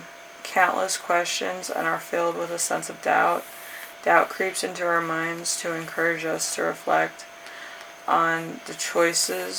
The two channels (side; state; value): both; identical; correlation 1.00